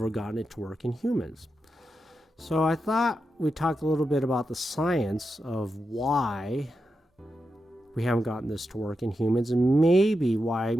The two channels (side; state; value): both; normal; correlation 0.88